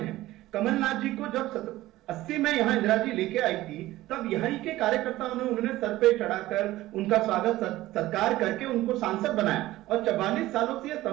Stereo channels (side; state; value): left; quieter; 16.5 dB